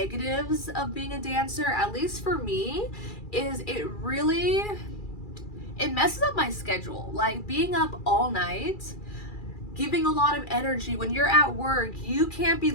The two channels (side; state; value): right; late; 2.4 ms